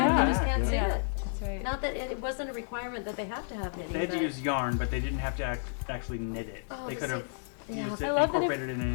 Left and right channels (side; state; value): right; silent; digital silence